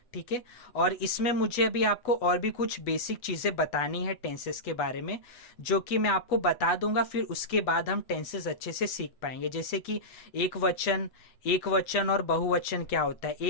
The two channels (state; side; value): late; right; 8.1 ms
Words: ठीक है, और इसमें मुझे अभी आपको और भी कुछ बेसिक चीजें बतानी है टेंसेस के बारे में, जो कि मैं आपको बता दूंगा। फिर उसके बाद हम टेंसेस अच्छे से सीख पाएंगे। जैसे कि एक वचन और बहुवचन क्या होता है।